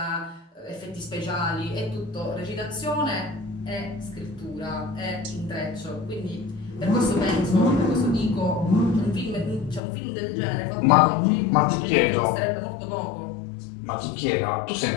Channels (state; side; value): drops out; right; at 9.8 s